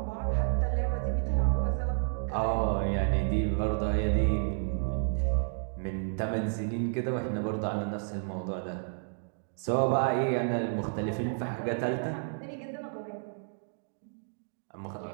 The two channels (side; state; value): left; silent; digital silence